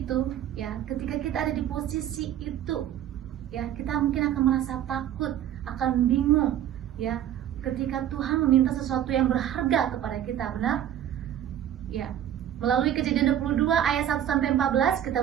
ya, ketika kita ada di posisi itu ya, kita mungkin akan merasa takut, akan bingung ya, ketika Tuhan meminta sesuatu yang berharga kepada kita, benar? Ya, melalui Kejadian 22 ayat 1 sampai 14 kita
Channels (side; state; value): left; quieter; 10.8 dB